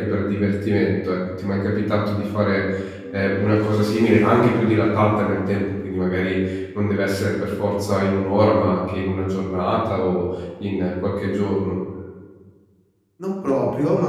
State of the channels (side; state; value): both; identical; correlation 1.00